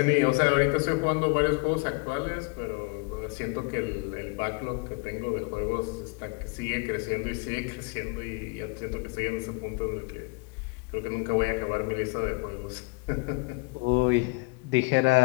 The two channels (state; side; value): quieter; right; 30.3 dB